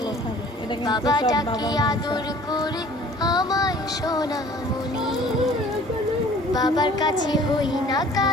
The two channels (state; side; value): normal; both; correlation 0.50